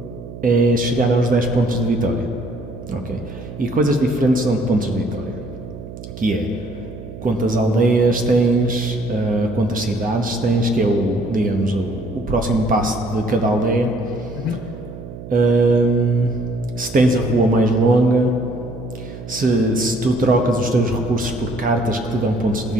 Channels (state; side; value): noise; right; hum, 13 dB below the sound